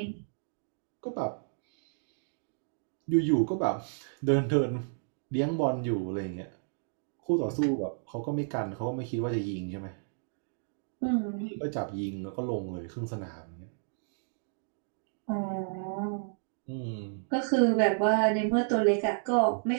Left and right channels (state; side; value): silent; left; digital silence